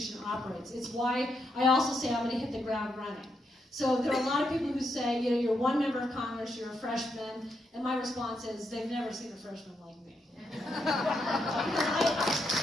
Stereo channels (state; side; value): normal; both; correlation 0.80